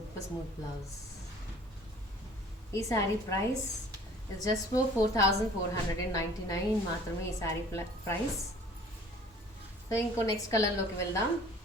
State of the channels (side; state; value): both; normal; correlation 0.50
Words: స్మూత్ బ్లౌజ్. ఈ sari price is just for 4499 మాత్రమే ఈ శారీ ప్రైస్. సో ఇంకో నెక్స్ట్ కలర్లోకి వెళ్దాం.